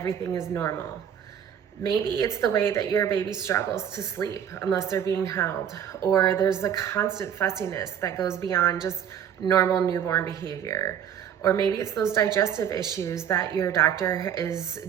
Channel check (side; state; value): left; quieter; 8.9 dB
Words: is normal. Maybe it's the way that your baby struggles to sleep unless they're being held, or there's the constant fussiness that goes beyond just normal newborn behavior. Or maybe it's those digestive issues that your doctor is